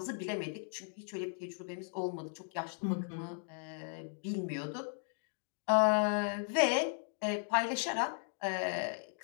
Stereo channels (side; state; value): right; silent; 53 dB below the other